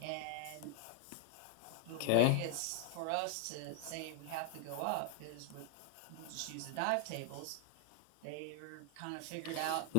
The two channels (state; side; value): different; both; correlation 0.00